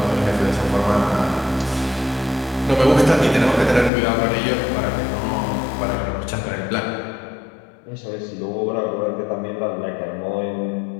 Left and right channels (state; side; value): drops out; right; at 3.9 s